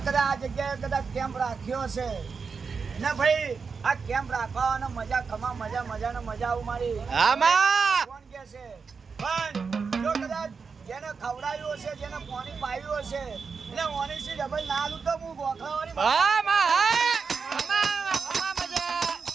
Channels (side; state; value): left; quieter; 5.3 dB